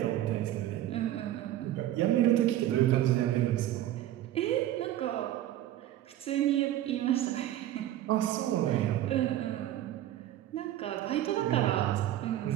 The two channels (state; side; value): quieter; left; 13.2 dB